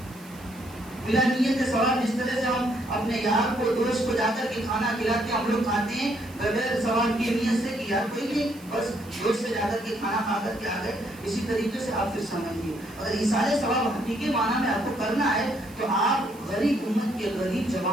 بلا نیت ثواب، جس طرح سے ہم اپنے یار کو، دوست کو جا کر کے کھانا کھلاتے ہیں، ہم لوگ کھاتے ہیں بغیر ثواب کی نیت سے کہ یار کوئی نہیں، بس دوست سے جا کر کے کھانا کھا کر کے آ گئے، اسی طریقے سے آپ پھر سمجھیے اگر ایصال ثواب حقیقی معنی میں آپ کو کرنا ہے تو آپ غریب امت کے غریب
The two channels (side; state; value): right; noise; hiss, 23 dB below the sound